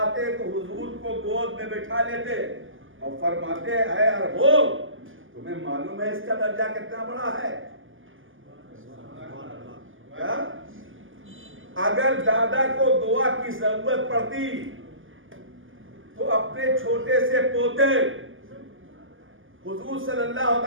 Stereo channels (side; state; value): left; late; 0.58 ms